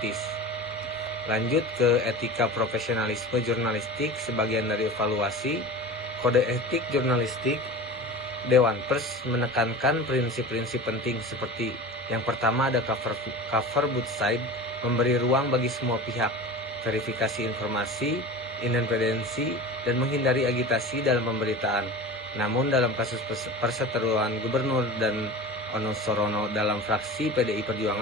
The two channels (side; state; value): both; normal; correlation 0.34